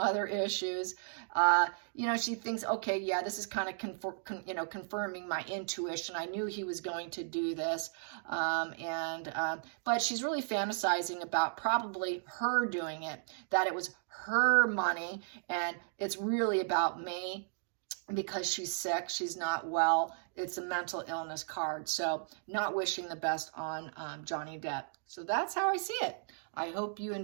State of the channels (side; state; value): left; silent; digital silence